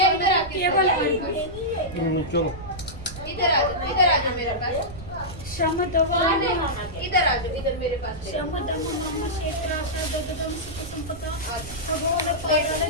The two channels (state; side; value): noise; right; rumble, 14 dB below the sound